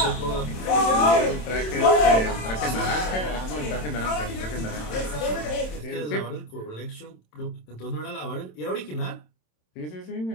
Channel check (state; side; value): late; right; 27 ms